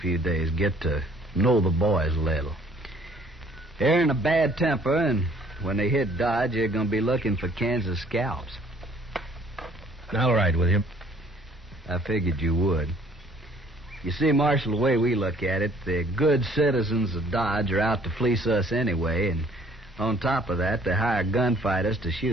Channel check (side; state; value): both; normal; correlation 0.59